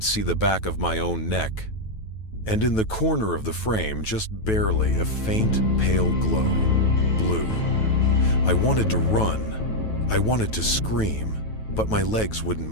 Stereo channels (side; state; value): right; late; 9.2 ms